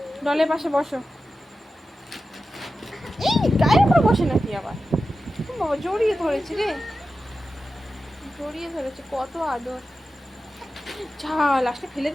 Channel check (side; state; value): both; normal; correlation 0.93